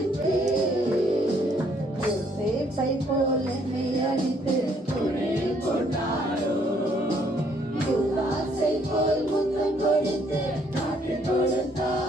ஆராதிப்பேன். யோசேப்பை போல் என்னை அடித்து குழியில் போட்டாரோ, யூதாசை போல் முத்தம் கொடுத்து காட்டிக்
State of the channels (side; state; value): both; normal; correlation 0.67